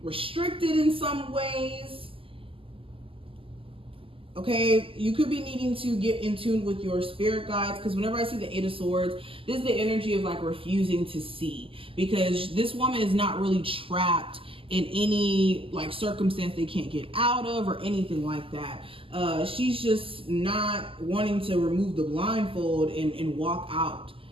restricted in some ways. Okay, you could be needing to get in tune with your spirit guides, because whenever I see the Eight of Swords, this is the energy of like refusing to see, because this woman is not really trapped in any like circumstance they can't get out of or anything like that. She's just not wanting to remove the blindfold and walk out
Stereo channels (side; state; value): left; late; 0.26 ms